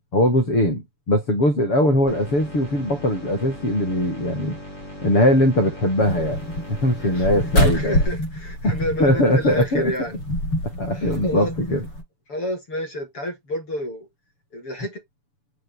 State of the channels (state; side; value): late; right; 7.0 ms